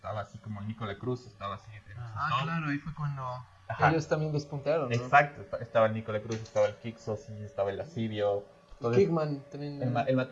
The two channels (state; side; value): identical; both; correlation 1.00